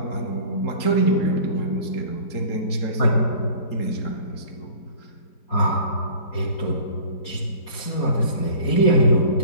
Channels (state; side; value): late; right; 4.2 ms